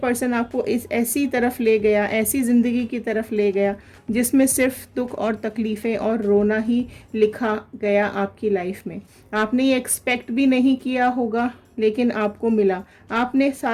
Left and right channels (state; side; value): identical; both; correlation 1.00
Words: आपको इस ऐसी तरफ ले गया, ऐसी ज़िंदगी की तरफ ले गया जिसमें सिर्फ दुख और तकलीफ़ें और रोना ही लिखा गया आपकी लाइफ में। आपने ये एक्सपेक्ट भी नहीं किया होगा, लेकिन आपको मिला। आपने